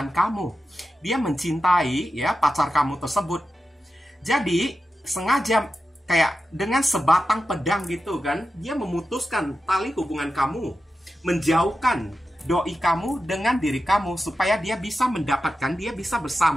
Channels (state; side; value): normal; both; correlation 0.91